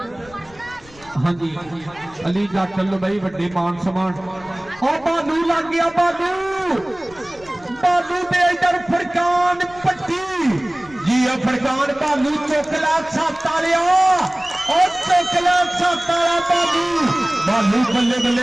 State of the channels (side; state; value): left; noise; rumble, 24 dB below the sound